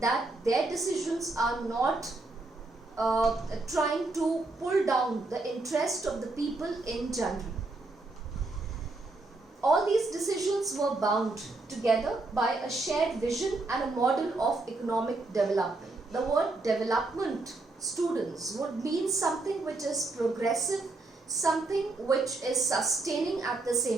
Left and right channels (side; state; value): left; quieter; 3.2 dB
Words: that their decisions are not trying to pull down the interest of the people in general. All these decisions were bound together by a shared vision and a model of economic development. The word development, students, would mean something which is progressive, something which is sustaining at the